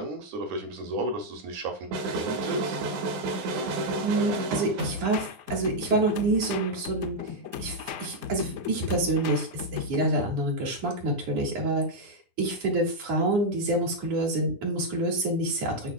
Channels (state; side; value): late; left; 9.9 ms